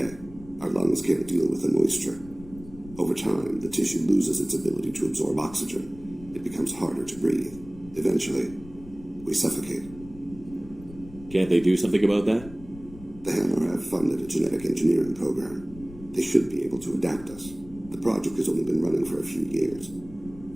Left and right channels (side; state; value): left; noise; rumble, 18 dB below the sound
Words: Our lungs can't deal with the moisture. Over time, the tissue loses its ability to absorb oxygen. It becomes harder to breathe. Eventually, we suffocate. Can't they do something about that? The Hammar have funded a genetic engineering program. They should be able to adapt us. The project has only been running for a few years.